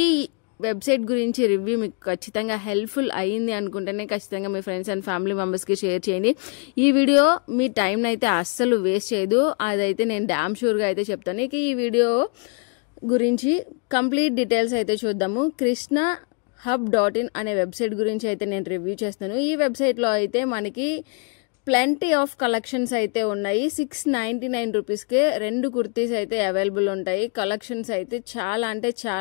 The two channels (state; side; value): quieter; right; 35.7 dB